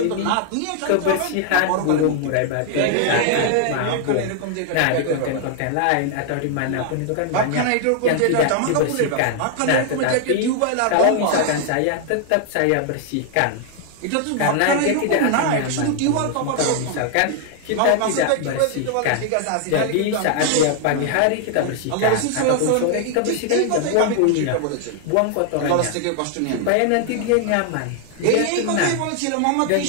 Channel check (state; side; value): different; both; correlation 0.00